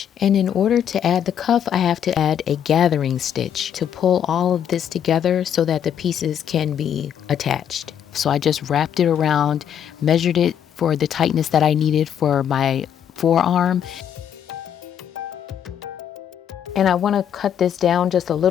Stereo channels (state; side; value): quieter; right; 9.1 dB